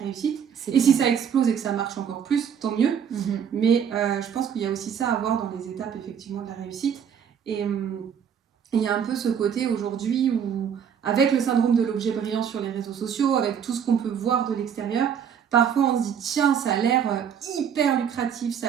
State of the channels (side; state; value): left; quieter; 8.0 dB